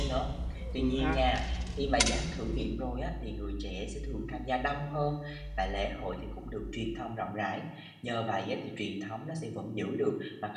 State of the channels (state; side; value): identical; both; correlation 1.00